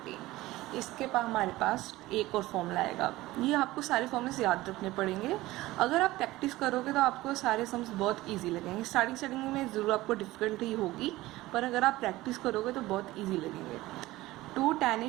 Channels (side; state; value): left; quieter; 17.9 dB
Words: इसके बाद हमारे पास एक और फॉर्मूला आएगा। ये आपको सारे फॉर्मूले याद रखने पड़ेंगे। अगर आप प्रैक्टिस करोगे तो आपको सारे सम्स बहुत इजी लगेंगे। स्टार्टिंग में ज़रूर आपको डिफ़िकल्टी होगी, पर अगर आप प्रैक्टिस करोगे तो बहुत इजी लगेंगे। 2 tan